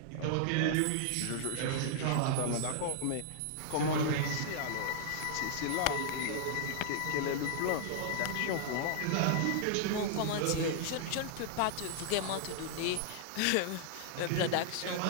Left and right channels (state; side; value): different; both; correlation -0.01